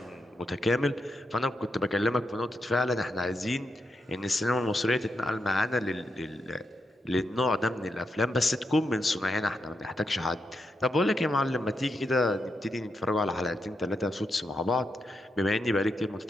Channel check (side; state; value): both; normal; correlation 0.84